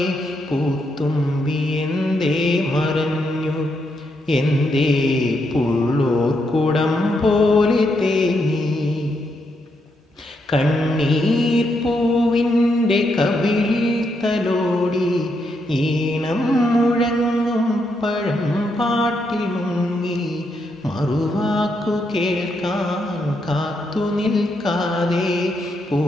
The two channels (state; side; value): normal; both; correlation 0.80